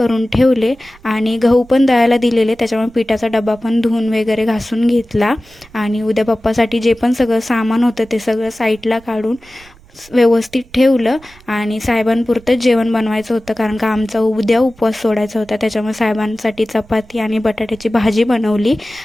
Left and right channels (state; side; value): noise; right; rumble, 26 dB below the sound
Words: ठेवले आणि गहू पण दळायला दिलेले, त्याच्यामुळे पिठाचा डबा पण धुवून वगैरे घासून घेतला. आणि उद्या बाप्पासाठी जे पण सगळं सामान होतं ते सगळं साईडला काढून व्यवस्थित ठेवलं. आणि साहेबांपुरतं जेवण बनवायचं होतं, कारण का आमचा उद्या उपवास सोडायचा होता, त्याच्यामुळे साहेबांसाठी चपाती आणि बटाट्याची भाजी बनवली